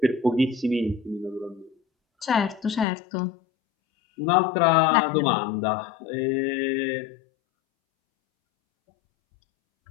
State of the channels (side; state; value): right; drops out; at 2.9 s